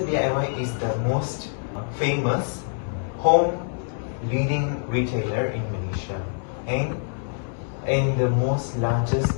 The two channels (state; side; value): silent; right; 62 dB below the other